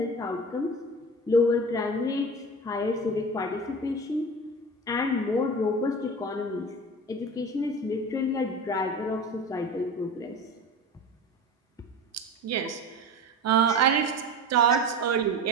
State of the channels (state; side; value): normal; both; correlation 0.32